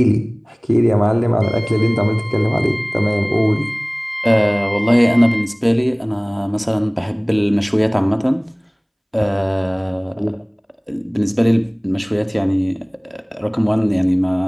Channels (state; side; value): identical; both; correlation 1.00